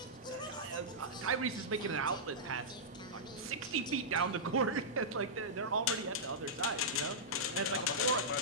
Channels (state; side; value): noise; left; hum, 28 dB below the sound